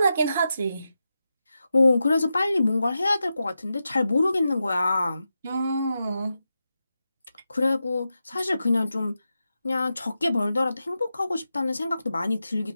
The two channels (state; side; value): inverted; both; correlation -0.89